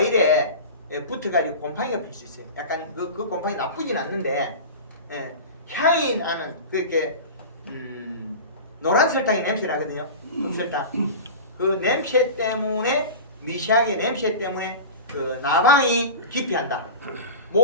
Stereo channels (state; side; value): inverted; both; correlation -0.31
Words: 붙어가지고 곰팡이가 필 수 있어요. 약간 그 곰팡이 나쁘진 않는데 향이 나는 그렇게 노란 설탕이 냄새 나거든요. 흑설탕. 그 냄새 때문에 미시하게 냄새 때문에 그 나방이 기피한다.